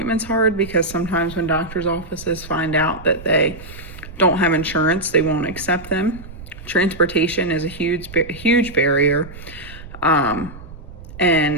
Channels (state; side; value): noise; right; rumble, 15 dB below the sound